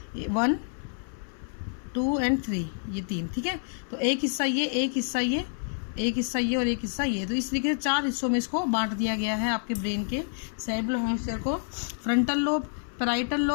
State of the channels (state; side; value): silent; right; 59 dB below the other